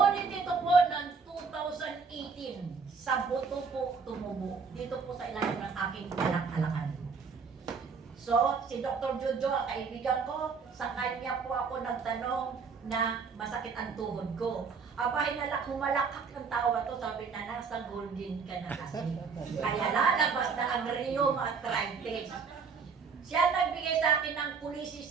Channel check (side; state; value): left; quieter; 5.3 dB